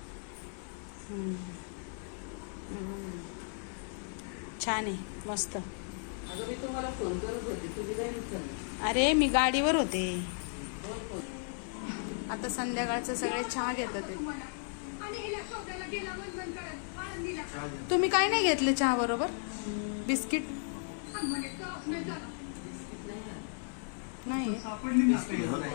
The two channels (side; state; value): right; silent; 55 dB below the other